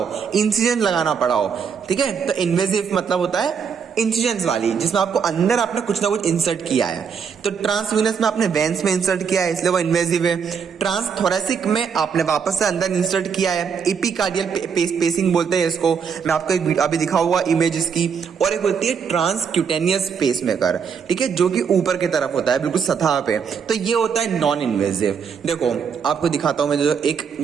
इंसिजन लगाना पड़ा हो, ठीक है। तो इन्वेजिव मतलब होता है इंसिजन्स वाली, जिसमें आपको अंदर आपने कुछ ना कुछ इंसर्ट किया है। तो ट्रांसवीनस में आपने वेन्स में इंसर्ट किया है, इसलिए वो इन्वेजिव है। ट्रांसथोरेसिक में आपने वापस से अंदर इंसर्ट किया है, एपिकार्डियल पेसिंग बोलते हैं इसको। मैं आपको एक अभी दिखा हुआ इमेज इसकी। और एक होती है ट्रांसक्यूटेनियस पेसमेकर, ठीक है, जो कि ऊपर की तरफ होता है, बिल्कुल सतह पे। तो ये होता है नॉन इन्वेजिव। देखो आपको दिखाता हूं, मैं जो एक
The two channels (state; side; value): quieter; left; 6.6 dB